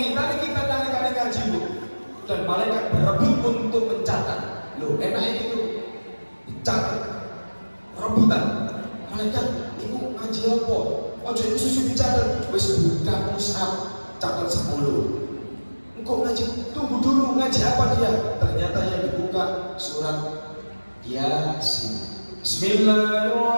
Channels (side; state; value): both; inverted; correlation -1.00